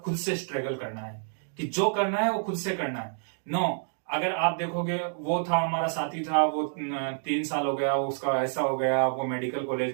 खुद से स्ट्रगल करना है कि जो करना है वो खुद से करना है। नो, अगर आप देखोगे वो था हमारा साथी था, वो 3 साल हो गया, उसका ऐसा हो गया, वो मेडिकल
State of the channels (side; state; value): left; silent; digital silence